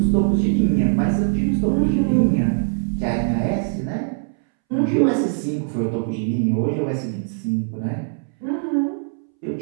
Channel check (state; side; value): silent; left; 65 dB below the other